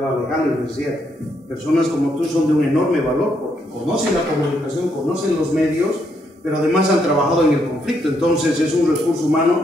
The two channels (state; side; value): normal; both; correlation 0.76